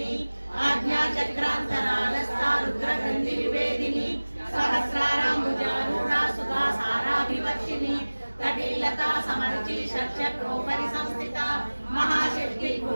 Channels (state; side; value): inverted; both; correlation -1.00